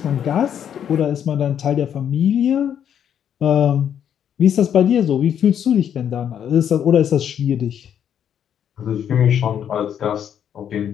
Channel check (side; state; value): right; quieter; 9.1 dB